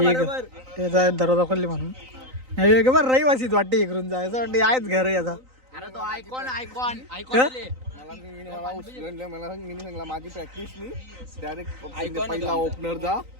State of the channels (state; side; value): late; left; 3.9 ms